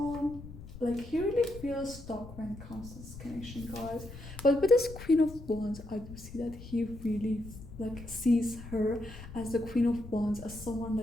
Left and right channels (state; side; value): noise; left; rumble, 14 dB below the sound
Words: Like he really feels stuck when it comes to this connection, guys. But with this Queen of Wands, I do see that he really like sees her as the Queen of Wands, as someone